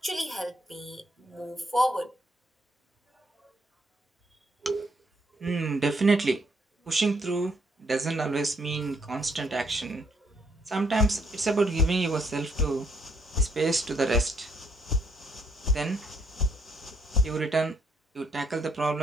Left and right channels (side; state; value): both; normal; correlation 0.70